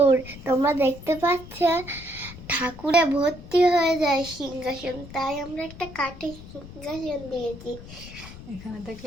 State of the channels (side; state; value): left; noise; rumble, 15 dB below the sound